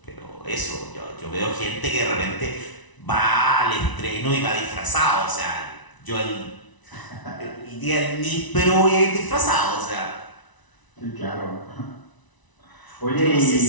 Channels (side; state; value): right; late; 1.0 ms